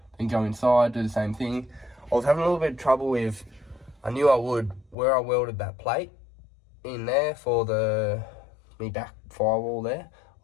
then go inside, do the same thing. I was having a little bit of trouble with, I knew I would, where I welded that plate in there for me back firewall there. I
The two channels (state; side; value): drops out; right; at 5.0 s